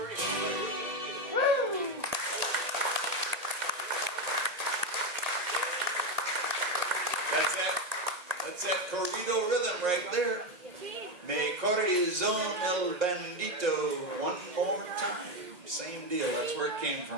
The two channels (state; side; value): late; left; 1.9 ms